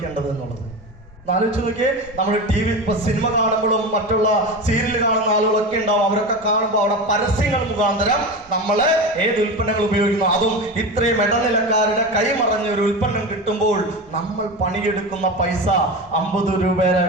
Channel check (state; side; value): normal; both; correlation 0.25